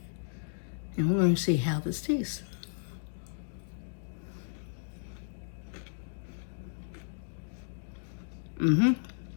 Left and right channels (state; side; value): silent; right; digital silence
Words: And we're going to see how this tastes.